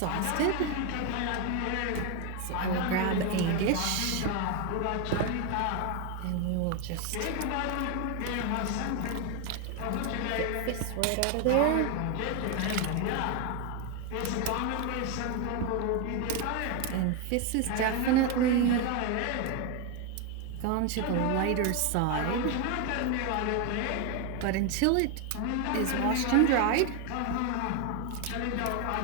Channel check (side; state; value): both; different; correlation 0.01